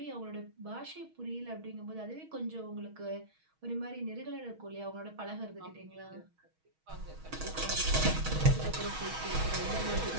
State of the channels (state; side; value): late; left; 6.3 ms